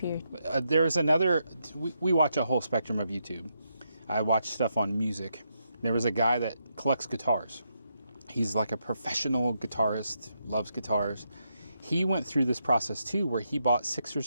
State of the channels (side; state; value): both; inverted; correlation -0.81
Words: There's another, we watch a whole spectrum of YouTube. I watch stuff on music. There was a guy that collects guitars. He's like a professional guitarist, loves guitars. He went through this process too, where he bought 6 or